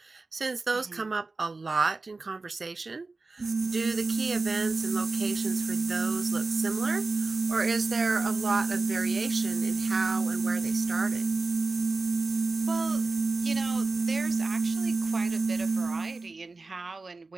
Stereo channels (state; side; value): quieter; left; 3.6 dB